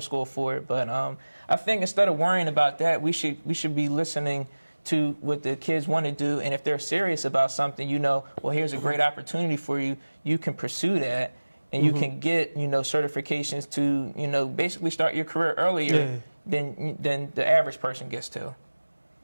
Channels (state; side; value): inverted; both; correlation -1.00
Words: school for it. But I think instead of worrying about that, we should be listening to what the kids want to do, and if they're serious about something, you know, well, here's a great opportunity for you. You can pursue that, and you can get, you know, certifications to, you know, basically start your career earlier than the average person gets to.